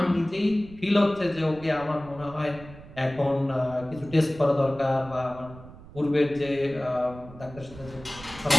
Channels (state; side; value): noise; right; rumble, 18 dB below the sound